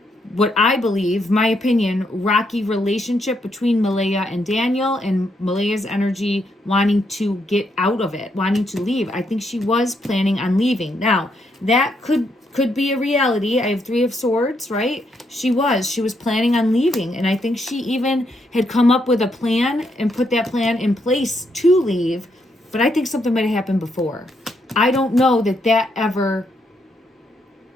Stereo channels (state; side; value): normal; both; correlation 0.77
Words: what I believe, my opinion, rocky relationship between Malaya and Daniel, and Malaya's energy wanting to get out of it, wanting to leave. I think she was planning on leaving. Now, that could be a reality. I have 3 of Swords, right? She was planning on leaving, and I think she even had come up with a plan and put that plan in place to leave, but I think something might have happened before. I don't know that ever